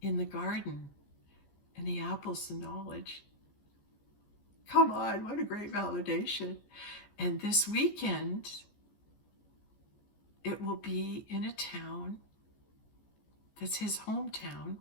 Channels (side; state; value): right; late; 14 ms